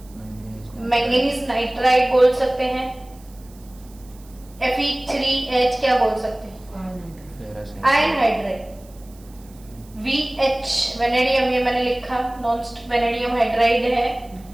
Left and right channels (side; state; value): right; noise; hiss, 27 dB below the sound